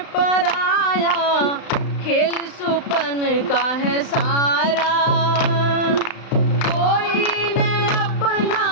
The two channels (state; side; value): late; right; 35 ms